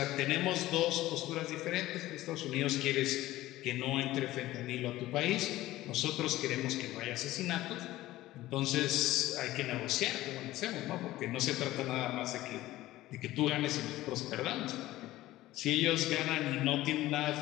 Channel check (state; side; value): quieter; right; 16.3 dB